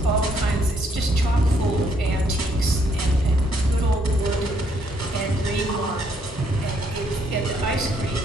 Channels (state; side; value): normal; both; correlation 0.71